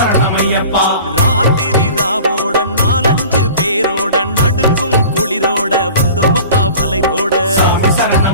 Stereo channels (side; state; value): both; inverted; correlation -0.42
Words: ராத்திரி ராவோட 4-5 பேரோட நடுங்கும் குளிரோட வந்தோமப்பா வலைரோட